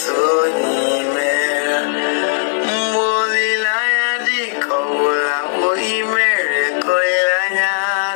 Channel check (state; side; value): silent; right; 64 dB below the other